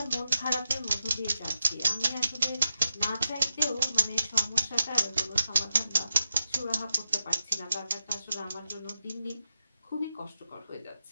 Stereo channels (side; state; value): both; inverted; correlation -0.88